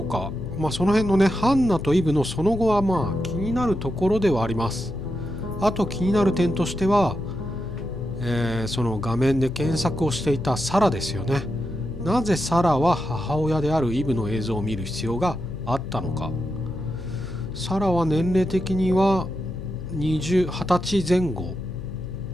か。その辺のね、ハンナとイブのその後は気になるところではあります。あと気になる点としては、その画面で検索をしていたサラですよね。なぜサラは母親であるイブの映像を見る必要があったのか。サラは年齢的には20歳前後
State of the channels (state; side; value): noise; left; hum, 11 dB below the sound